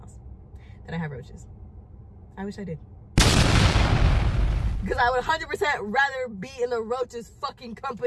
That I have roaches. I wish I did. Because I would 100% rather be in the roaches fucking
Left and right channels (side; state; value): both; identical; correlation 1.00